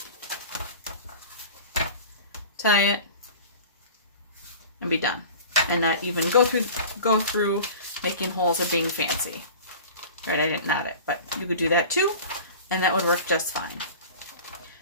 tie it, and be done. And not even go through making holes or being fancy. Right, I didn't knot it, but you could do that too, and that would work just fine.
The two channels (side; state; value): both; inverted; correlation -0.38